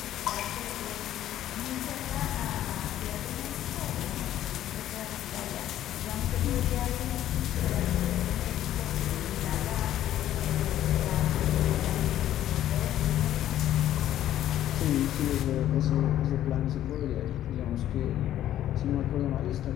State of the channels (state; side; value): quieter; right; 12.3 dB